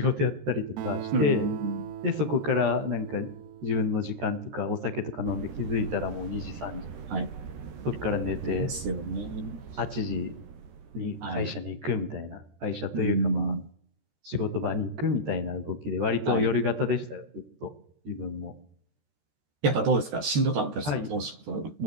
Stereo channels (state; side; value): late; left; 13 ms